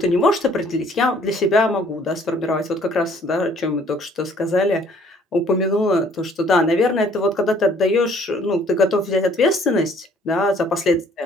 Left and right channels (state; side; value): normal; both; correlation 0.59